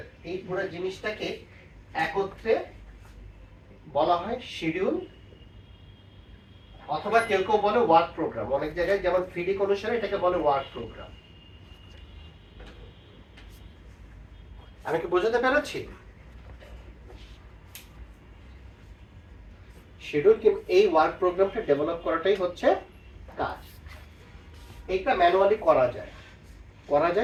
এই পুরো জিনিসটাকে একত্রে বলা হয় শিডিউল, অথবা কেউ কেউ বলে ওয়ার্ক প্রোগ্রাম। অনেক জায়গায় যেমন ফিডিক অনুসারে এটাকে বলে ওয়ার্ক প্রোগ্রাম। আমি কি বোঝাতে পেরেছি? শিডিউল কি এই ওয়ার্ক প্রোগ্রামটা ডেভেলপ করাটাই হচ্ছে কাজ। এইটা ম্যানুয়ালি করা যায়,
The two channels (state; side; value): identical; both; correlation 1.00